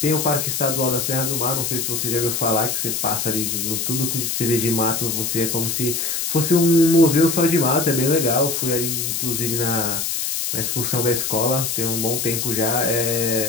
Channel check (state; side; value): noise; left; hiss, 1 dB below the sound